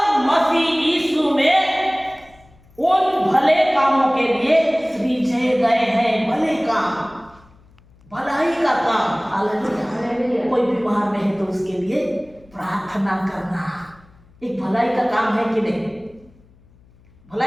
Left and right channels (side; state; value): left; noise; hum, 28 dB below the sound